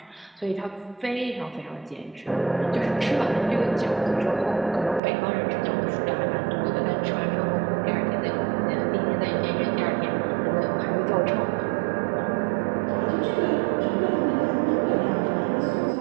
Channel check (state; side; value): drops out; left; at 5.0 s